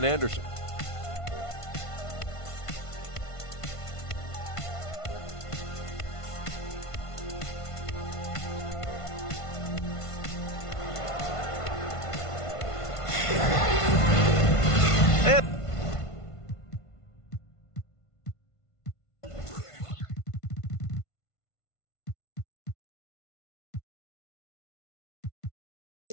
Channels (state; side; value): late; right; 1.5 ms